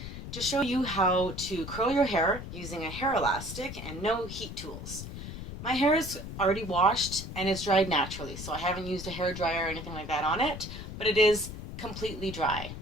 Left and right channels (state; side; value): noise; left; rumble, 9 dB below the sound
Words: to show you how to curl your hair using a hair elastic and no heat tools. My hair is already washed and it's dried naturally, so I haven't used a hair dryer or anything like that on it, but it is completely dry